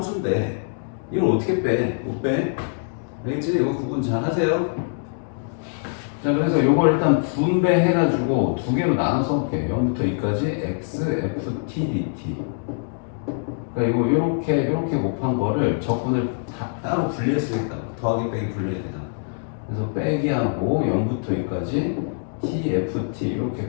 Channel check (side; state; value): right; silent; digital silence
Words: 이걸 어떻게 빼? 못 빼? 알겠지? 이거 구분 잘 하세요. 자, 그래서 요걸 일단 분배해가지고 두 개로 나눠 써볼게요. 0부터 2까지 x, f, t, dt. 그러니까 이거 요렇게 곱한 거를 적분을 다 따로 분리했으니까 더하기 빼기 분리해야 되잖아. 그래서 빼기하고 0부터 2까지 t, f, t 이렇게